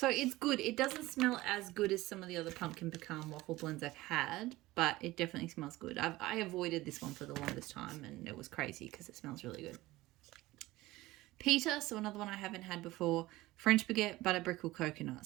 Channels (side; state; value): left; quieter; 18.4 dB